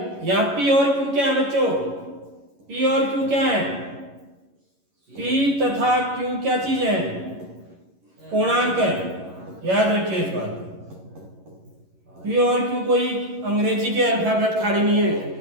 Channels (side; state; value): left; late; 11 ms